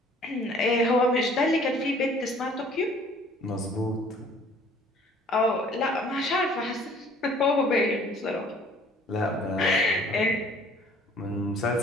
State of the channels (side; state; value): both; normal; correlation 0.55